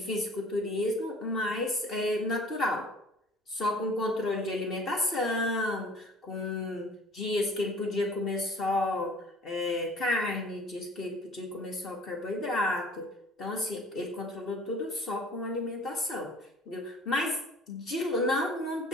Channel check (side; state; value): both; normal; correlation 0.48